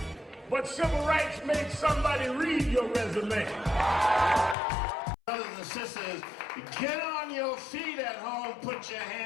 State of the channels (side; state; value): right; drops out; at 4.5 s